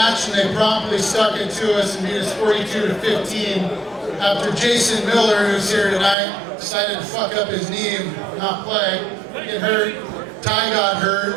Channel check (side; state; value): left; drops out; at 6.2 s